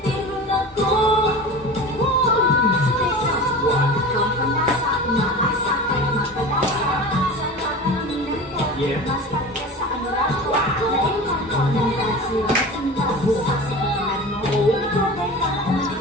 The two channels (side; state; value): both; normal; correlation 0.33